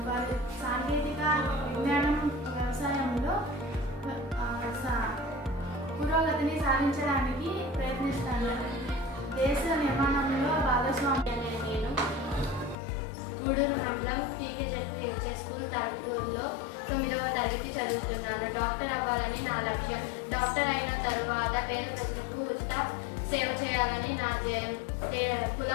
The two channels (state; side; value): drops out; right; at 12.8 s